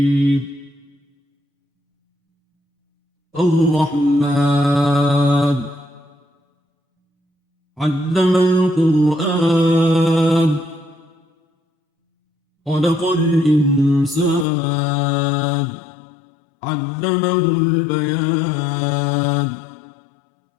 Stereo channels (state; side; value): drops out; right; at 14.5 s